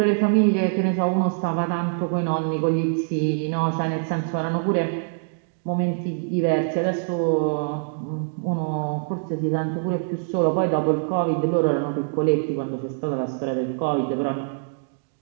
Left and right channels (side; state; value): left; silent; digital silence